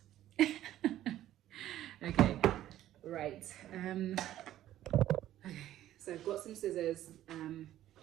Okay, right. Okay, so I've got some scissors.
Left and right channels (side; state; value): left; quieter; 13.0 dB